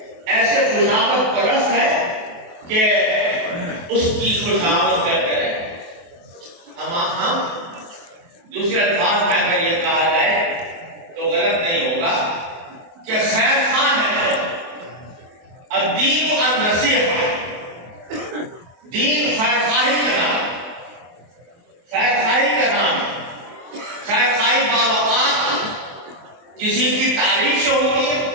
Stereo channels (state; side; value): late; left; 23 ms